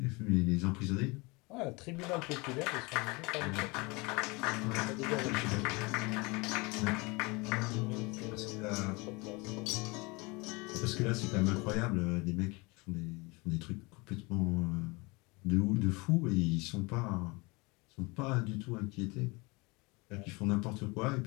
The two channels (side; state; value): right; quieter; 26.3 dB